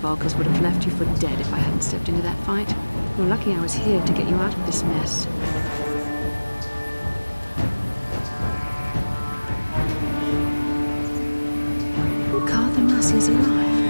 would have left you for dead if I hadn't stepped into that fight. You're lucky I was here to get you out of this mess. Carth Onasi is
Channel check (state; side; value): inverted; both; correlation -1.00